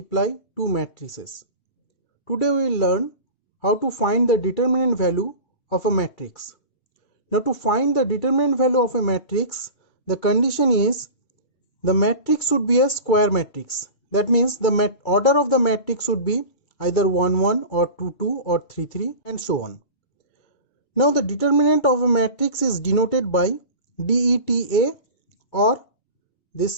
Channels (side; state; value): right; late; 2.3 ms